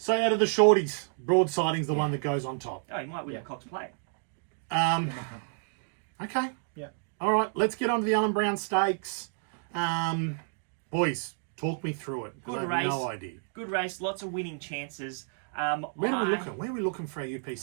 out of the shorties, broadsiding's the one that goes on top. Oh, he might win Yeah. the Cox Plate. Okay. Yeah. All right, let's get on to the Allen Brown Stakes. Boys, talk me through it, because I Good have race. no idea. Good race, lots of winning chances. Where are we looking? Where are we looking for our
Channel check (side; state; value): left; silent; digital silence